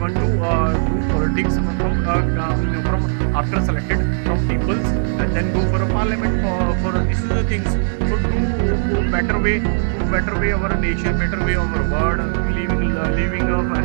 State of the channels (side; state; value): left; silent; digital silence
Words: do politics from after selected from peoples, and then go for a parliament for this is the things. So to better way our nation, better way our world, living a